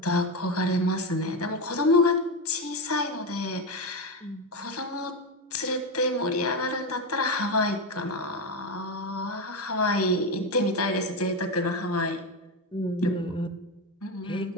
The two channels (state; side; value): normal; both; correlation 0.13